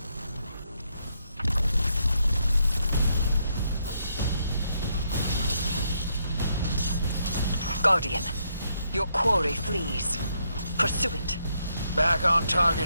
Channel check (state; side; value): inverted; both; correlation -0.77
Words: Guardian, your quarry flees. Pursue it. Back on